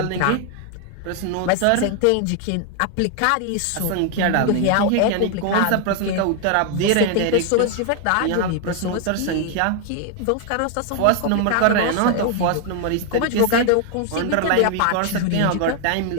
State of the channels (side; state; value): both; different; correlation 0.00